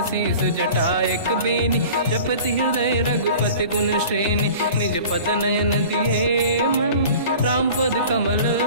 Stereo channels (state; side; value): inverted; both; correlation -0.42